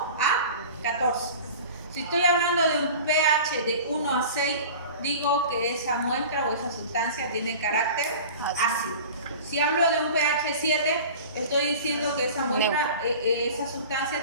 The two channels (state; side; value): inverted; both; correlation -0.38